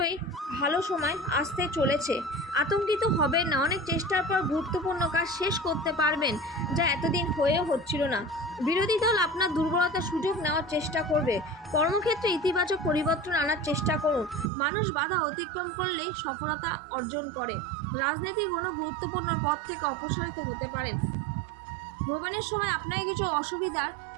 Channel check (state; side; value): drops out; left; at 14.5 s